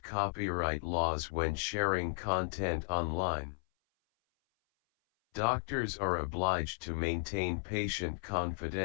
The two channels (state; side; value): silent; right; 55 dB below the other